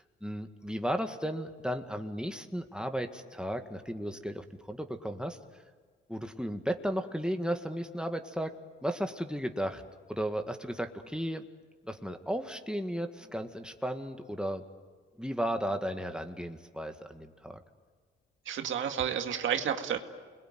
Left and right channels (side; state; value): both; normal; correlation 0.73